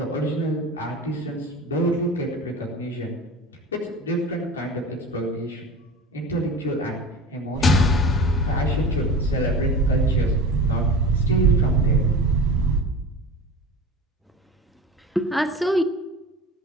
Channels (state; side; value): normal; both; correlation 0.34